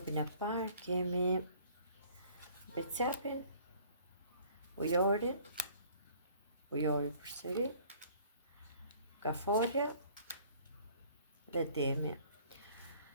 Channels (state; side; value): inverted; both; correlation -0.54